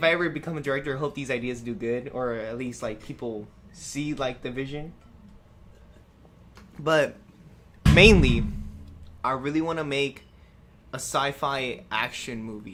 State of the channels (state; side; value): identical; both; correlation 1.00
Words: I ever become a director, I hope these ideas do good, or at least like people see like the vision. But mainly, I really want to make a sci-fi action